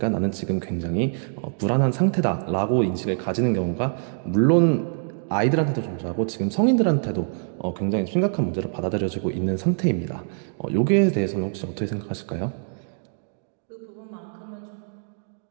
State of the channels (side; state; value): left; silent; digital silence